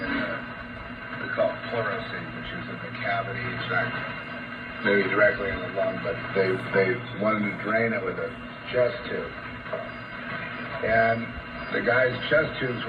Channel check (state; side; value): identical; both; correlation 1.00